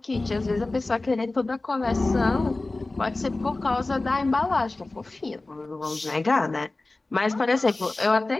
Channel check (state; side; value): quieter; right; 3.1 dB